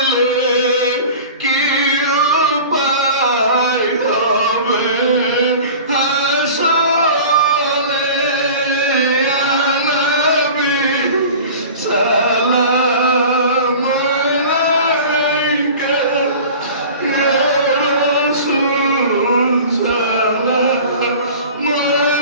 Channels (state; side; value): inverted; both; correlation -0.39